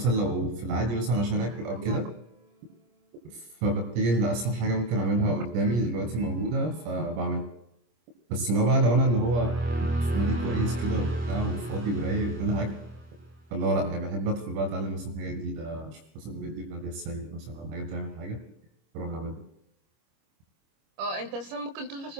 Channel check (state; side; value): late; left; 25 ms